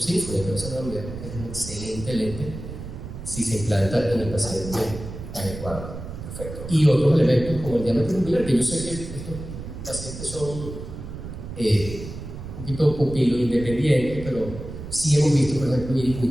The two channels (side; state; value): right; noise; rumble, 10 dB below the sound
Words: Symphony, pero eso no olvidemos que es un excelente lente si se implanta en el paciente adecuado. Perfecto. Y otros elementos como el diámetro ocular, que yo sé que estos pacientes son un poquito pupilo independientes, pero sí hemos visto, por ejemplo, iris muy